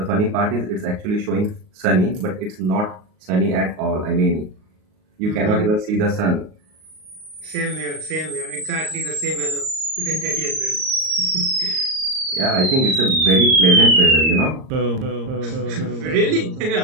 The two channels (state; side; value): late; left; 38 ms